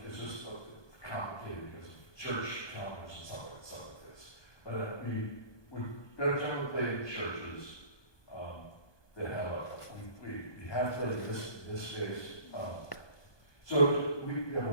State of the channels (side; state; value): right; late; 1.2 ms